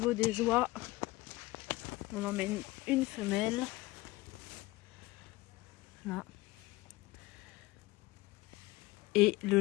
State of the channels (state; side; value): quieter; right; 20.2 dB